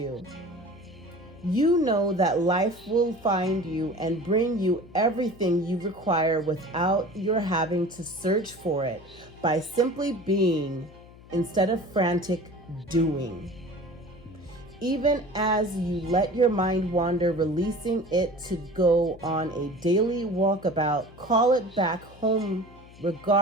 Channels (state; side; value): noise; left; hum, 22 dB below the sound